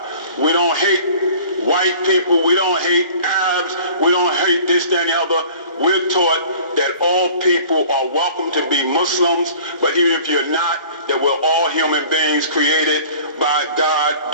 We don't hate white people, we don't hate Arabs, we don't hate this, that, and the other. We're taught that all people are welcome to be Muslims, but even if you're not, that we're all human beings created by God,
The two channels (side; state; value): both; inverted; correlation -0.46